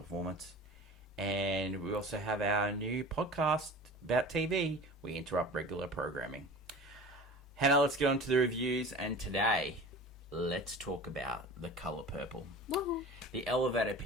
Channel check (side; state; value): both; normal; correlation 0.38